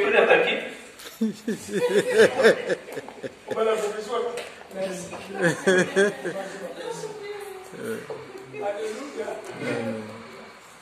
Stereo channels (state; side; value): identical; both; correlation 1.00